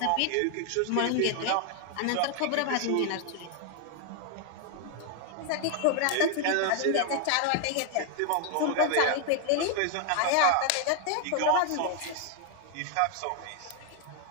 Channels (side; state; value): both; different; correlation 0.00